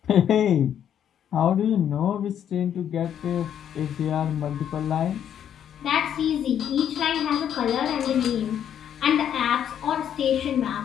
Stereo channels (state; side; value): quieter; right; 9.4 dB